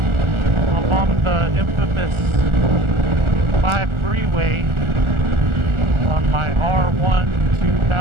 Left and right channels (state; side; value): late; left; 1.4 ms